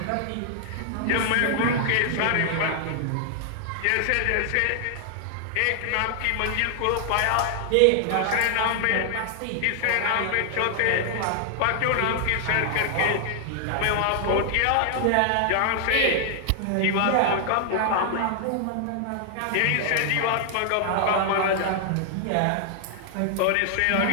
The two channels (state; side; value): different; both; correlation 0.00